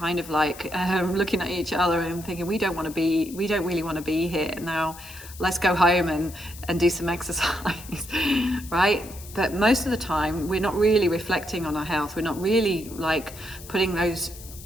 of like looking at each other and thinking, we don't really want to be here now. Let's go home and do some exercise, right? But most of the time, we're not really reflecting on our health. We're not really like putting those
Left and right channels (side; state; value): left; noise; hiss, 17 dB below the sound